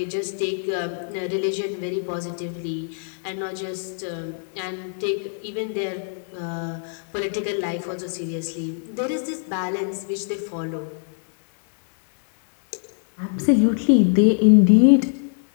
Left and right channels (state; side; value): silent; right; digital silence